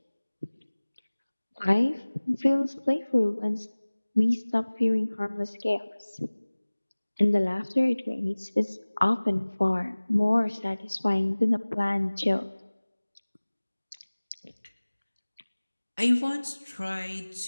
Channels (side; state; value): both; inverted; correlation -1.00